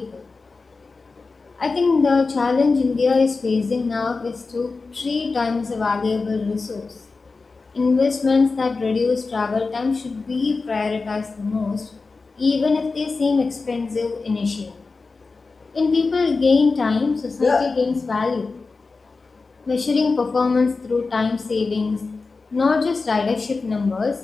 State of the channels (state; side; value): quieter; right; 4.1 dB